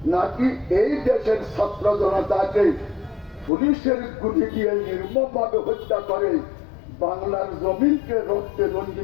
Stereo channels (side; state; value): right; drops out; at 3.5 s